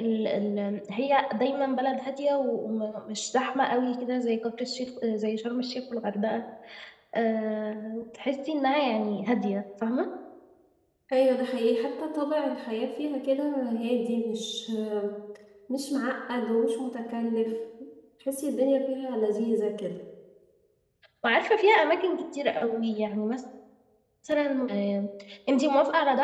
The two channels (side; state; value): both; identical; correlation 1.00